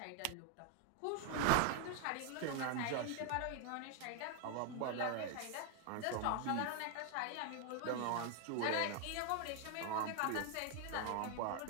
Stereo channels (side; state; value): both; different; correlation 0.01